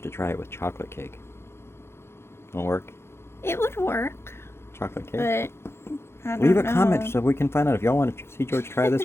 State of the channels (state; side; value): late; right; 0.12 ms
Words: to try it with chocolate cake. Won't work? It would work, Chocolate cake? but I don't Leave a know. comment so we can find out if y'all want to see George try